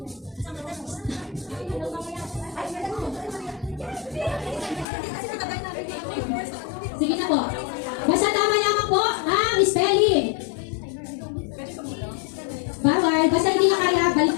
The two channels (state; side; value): drops out; right; at 4.9 s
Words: Sige na po. Basta tama lamang po ang spelling. Bawal. Basta hindi na kaya,